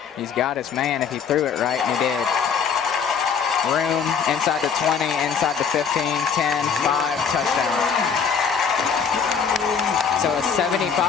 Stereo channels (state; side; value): quieter; right; 6.6 dB